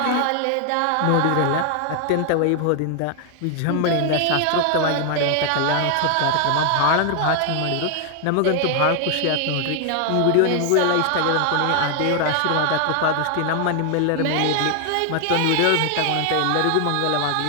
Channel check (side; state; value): both; different; correlation 0.00